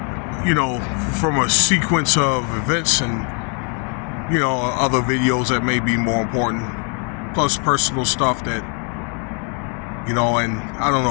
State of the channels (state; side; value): quieter; right; 39.1 dB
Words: from a sequence of events and, other videos that may be more important, plus personal stuff that, and I don't